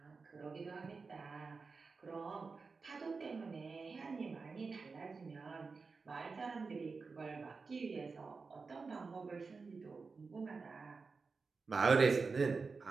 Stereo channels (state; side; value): quieter; left; 4.5 dB